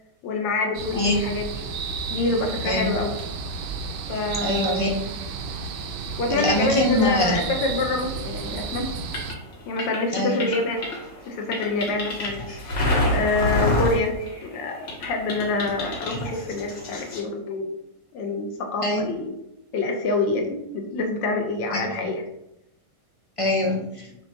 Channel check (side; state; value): right; late; 1.5 ms